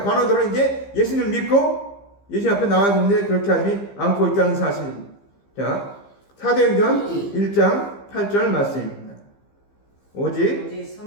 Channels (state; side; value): late; right; 15 ms